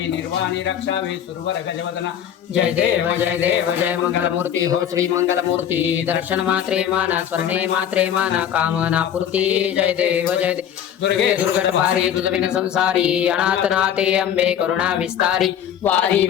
निर्वाणी रक्षावे सुरवर गजवदना जय देव जय मंगलमूर्ती हो श्री मंगलमूर्ती दर्शन मात्रे माना स्मरणे मात्रे माना कामना पूर्ती जय देव दुर्गे दुर्गट भारी तुझ बिन संसारी अनाथ नाथे अंबे करुणा विस्तारी वारी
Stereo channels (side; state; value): right; quieter; 9.6 dB